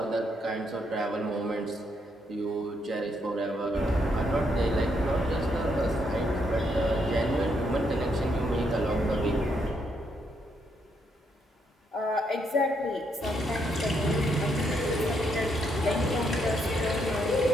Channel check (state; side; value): normal; both; correlation 0.76